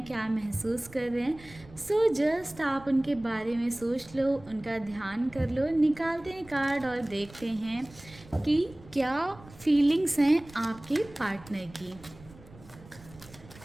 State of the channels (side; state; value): right; noise; rumble, 21 dB below the sound